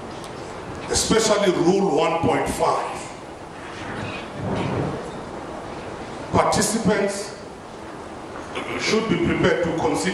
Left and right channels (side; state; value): both; identical; correlation 1.00